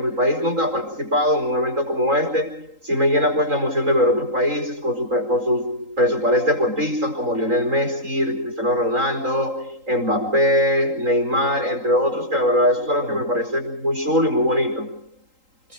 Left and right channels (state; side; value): late; left; 3.8 ms